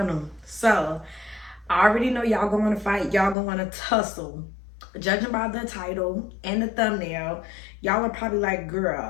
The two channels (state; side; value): drops out; right; at 3.4 s